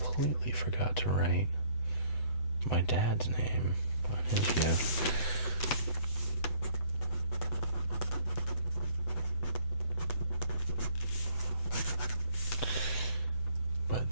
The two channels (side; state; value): right; late; 7.9 ms